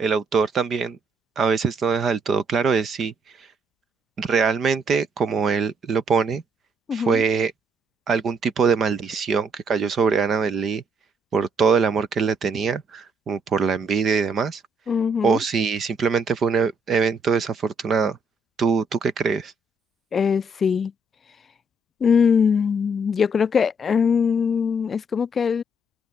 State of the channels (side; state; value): both; normal; correlation 0.70